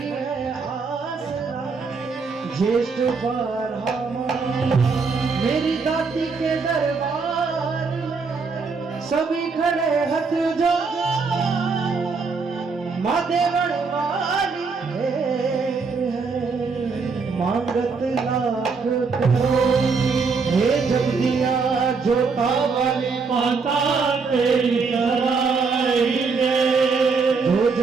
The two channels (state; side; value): quieter; left; 4.8 dB